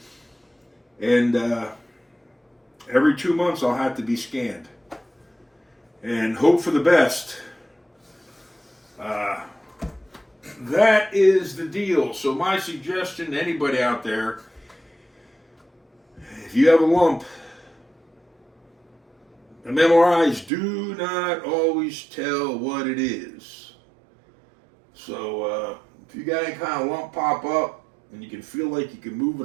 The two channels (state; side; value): drops out; left; at 20.5 s